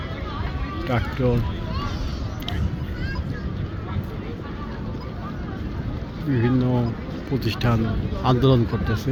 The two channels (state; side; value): identical; both; correlation 1.00